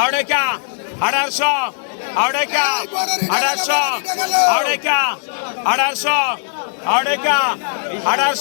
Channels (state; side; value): silent; right; digital silence